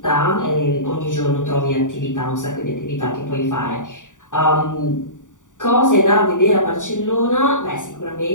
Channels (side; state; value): right; late; 0.87 ms